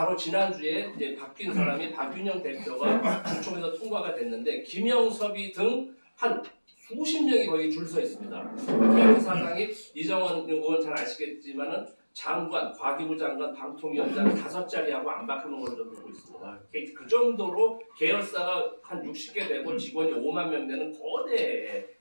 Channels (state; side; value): inverted; both; correlation -1.00